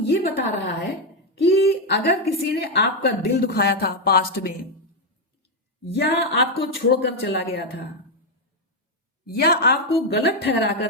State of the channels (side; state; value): both; normal; correlation 0.04